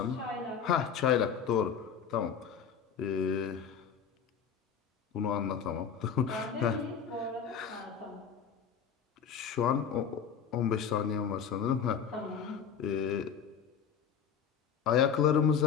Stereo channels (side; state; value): right; quieter; 7.3 dB